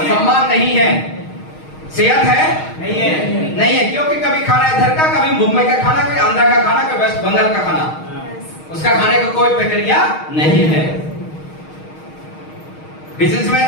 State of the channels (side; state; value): right; late; 6.4 ms